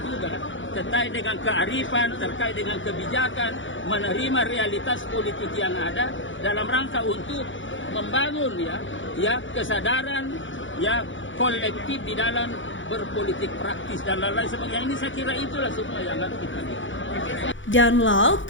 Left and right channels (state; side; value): late; right; 0.56 ms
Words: terkait dengan kearifan, terkait dengan kebijakan, menerima realitas politik yang ada dalam rangka untuk membangun ya kesadaran ya kolektif di dalam berpolitik praktis dan lain-lain sebagainya. Ini saya kira itulah semua yang harus kita lihat. Download